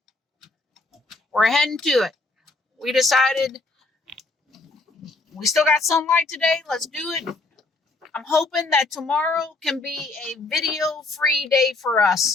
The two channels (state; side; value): quieter; right; 3.3 dB